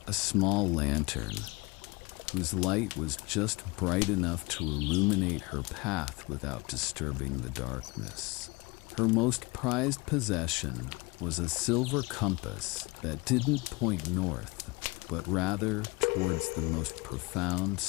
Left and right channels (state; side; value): quieter; right; 25.0 dB